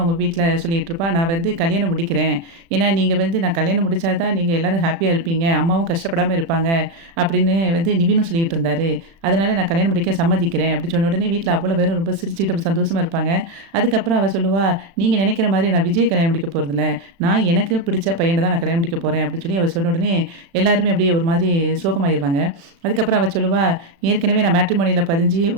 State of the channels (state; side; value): late; left; 36 ms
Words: வீட்ல சொல்லிட்டு இருப்பா. நான் வந்து கல்யாணம் முடிக்கிறேன். ஏன்னா நீங்க வந்து நான் கல்யாணம் முடிச்சா தான் நீங்க எல்லாரும் ஹேப்பியா இருப்பீங்க. அம்மாவும் கஷ்டப்படாம இருப்பாங்க. அப்படின்னு வந்து நிவினும் சொல்லிட்டு இருந்தாரு. அதனால நான் கல்யாணம் முடிக்க சம்மதிக்கிறேன். அப்படி சொன்ன உடனே வீட்ல அவ்வளோ பேரும் ரொம்ப சிரிச்சுட்டு அப்படி சந்தோஷமா இருப்பாங்க. அதுக்கப்புறம் அவ சொல்லுவா, நீங்க நினைக்கிற மாதிரி நான் விஜய் கல்யாணம் முடிக்க போறதில்ல. நான் எனக்கு பிடிச்ச பையன தான் நான் கல்யாணம் முடிக்க போறேன் அப்படின்னு சொல்லி அவ சொன்ன உடனே எல்லாருமே அப்படியே ஒரு மாதிரி சோகமாயிருவாங்க. அதுக்கப்புறம் அவ சொல்லுவா, ஏற்கனவே நான் மேட்ரிமோனியில பதிஞ்சு